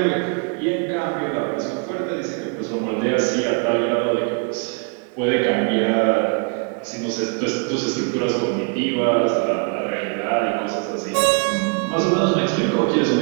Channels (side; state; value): left; quieter; 35.3 dB